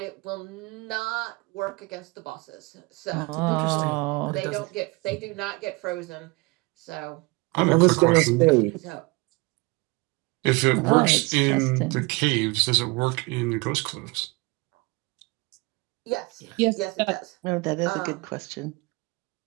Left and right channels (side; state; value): left; quieter; 25.4 dB